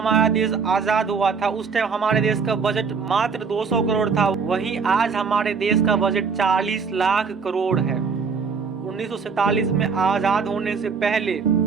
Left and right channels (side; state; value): left; quieter; 5.5 dB